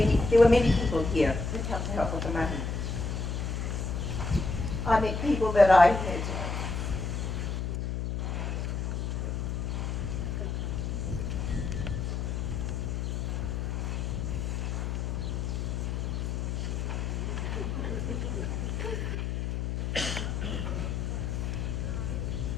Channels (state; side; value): noise; left; hum, 1 dB below the sound